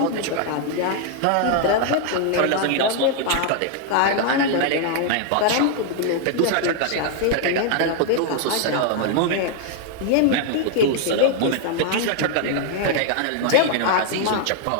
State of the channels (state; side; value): different; both; correlation 0.00